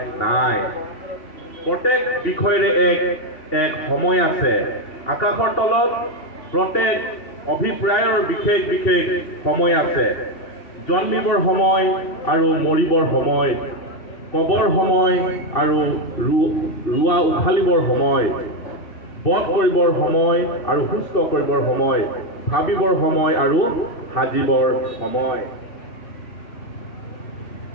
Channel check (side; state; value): right; late; 2.7 ms